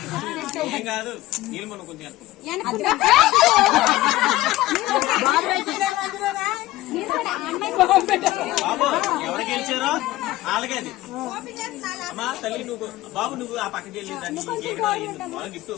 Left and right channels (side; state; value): right; quieter; 17.0 dB